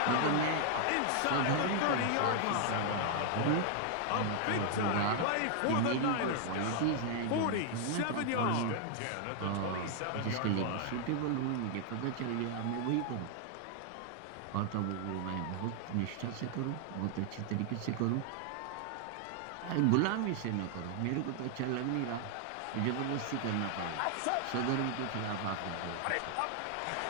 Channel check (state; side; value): different; both; correlation 0.00